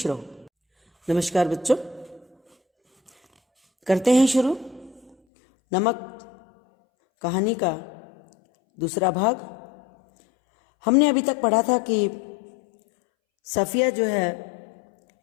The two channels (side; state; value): right; drops out; at 5.2 s